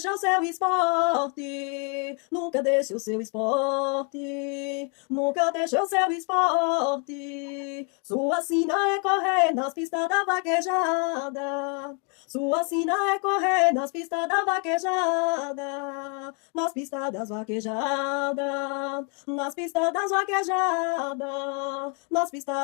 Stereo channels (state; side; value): quieter; right; 38.2 dB